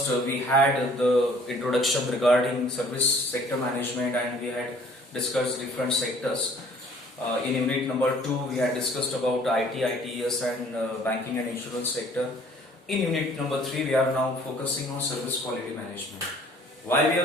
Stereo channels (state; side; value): normal; both; correlation 0.55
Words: we had the introduction regarding service sector management and we had discussed different sectors. In unit number 2, we had discussed about IT, ITES and banking and insurance sector. In unit number 3, we are now focusing on service quality management. Why we